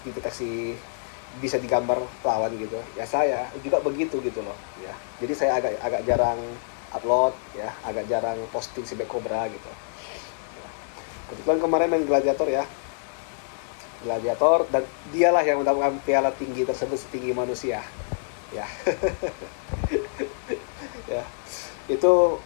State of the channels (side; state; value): right; silent; 61 dB below the other